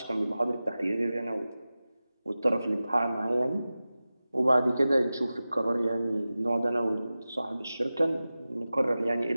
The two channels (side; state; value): both; inverted; correlation -0.96